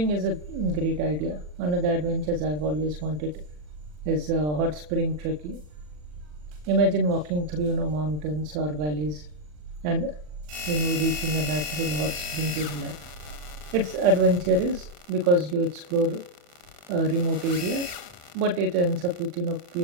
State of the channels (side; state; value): left; late; 40 ms